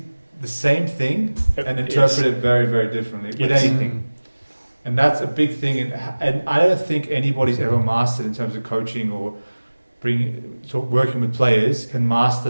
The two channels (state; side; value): inverted; both; correlation -1.00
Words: the same thing and interpret it very, very differently with anything. And that's a big thing, and I don't think anybody's ever mastered in terms of coaching or working with players can master